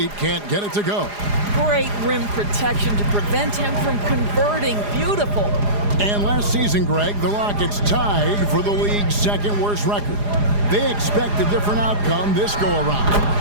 can't get it to go. Great rim protection to prevent him from converting. Beautiful. And last season, Greg, the Rockets tied for the league's second worst record. They expect a different outcome this go-around.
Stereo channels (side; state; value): left; late; 4.9 ms